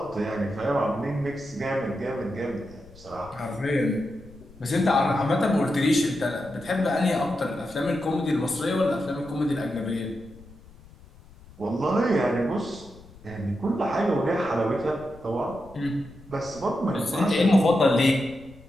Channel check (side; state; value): left; noise; rumble, 22 dB below the sound